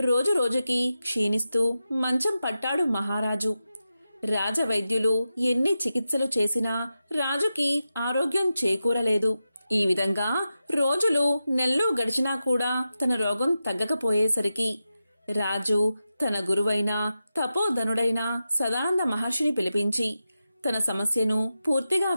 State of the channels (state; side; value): inverted; both; correlation -0.91